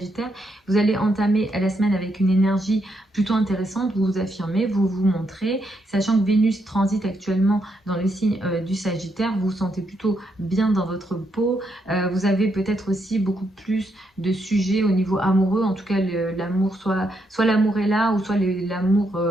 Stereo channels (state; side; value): normal; both; correlation 0.78